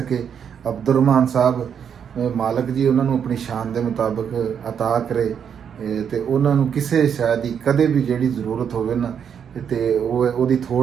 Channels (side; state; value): left; quieter; 7.8 dB